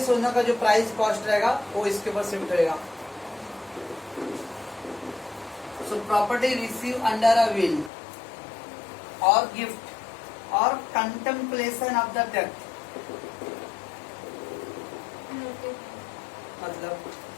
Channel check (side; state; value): right; drops out; at 7.9 s